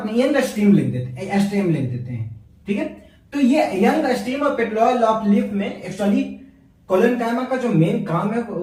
में यंग स्टेम लिख देते हैं, ठीक है। तो ये यंग स्टेम और पेट्यूल ऑफ लीफ में एक्चुअली कोलेनकाइमा का जो मेन काम है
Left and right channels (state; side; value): identical; both; correlation 1.00